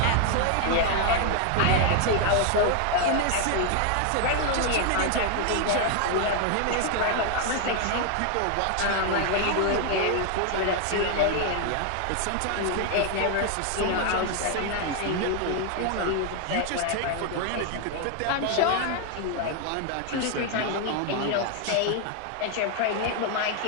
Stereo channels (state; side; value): different; both; correlation 0.00